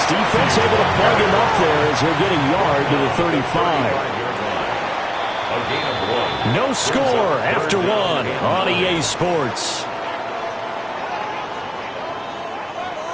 defense able to plug him up there as he'll get a yard to the 35. A gain of 1. No score after 1 on EA Sports.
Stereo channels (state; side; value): identical; both; correlation 1.00